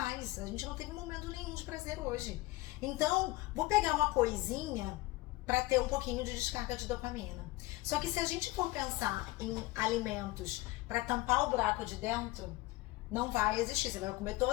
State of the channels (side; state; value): right; quieter; 19.8 dB